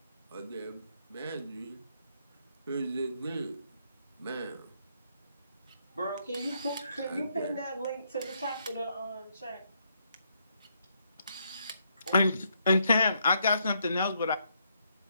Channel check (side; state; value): both; inverted; correlation -0.75